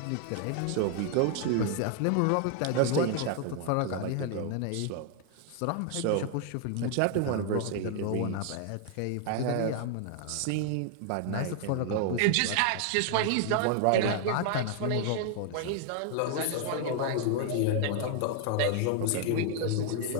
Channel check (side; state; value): both; different; correlation 0.00